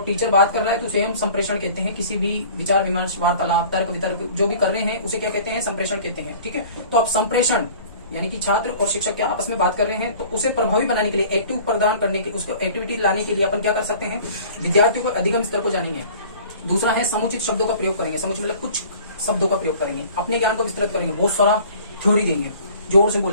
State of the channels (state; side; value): inverted; both; correlation -0.47